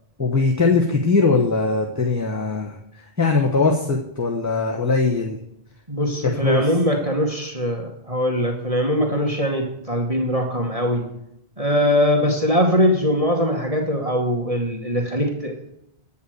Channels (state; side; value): late; left; 1.7 ms